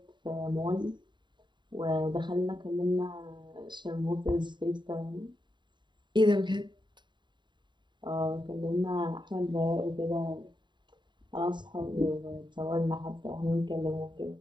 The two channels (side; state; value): left; late; 0.22 ms